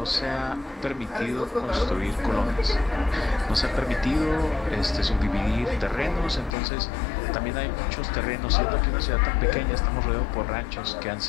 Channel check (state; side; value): drops out; right; at 6.6 s